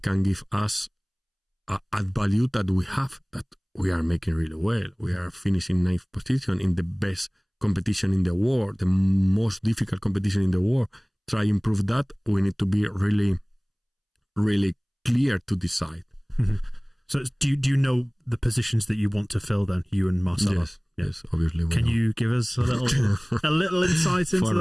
give us add value that we have, that we are making really well. We are finishing 9th position in the best competition in the world, the most difficult competition in the world. Try improve that. We need to be really, really clear to decide. Mm-hmm. So do you know the positions that you want to fill then, you and Marcelo? Yes, obviously. Can you give us a little insight into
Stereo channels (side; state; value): both; identical; correlation 1.00